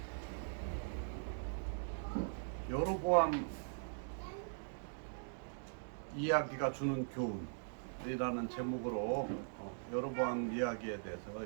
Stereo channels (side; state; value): left; silent; digital silence